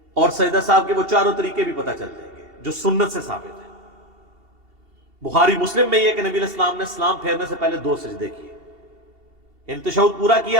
اور سجدہ صاحب کے وہ چاروں طریقے بھی پتہ چل جائیں گے جو سنت سے ثابت ہیں۔ بخاری مسلم میں یہ کہ نبی علیہ السلام نے سلام پھیرنے سے پہلے 2 سجدے کیے، یعنی تشہد پورا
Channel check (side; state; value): left; late; 2.8 ms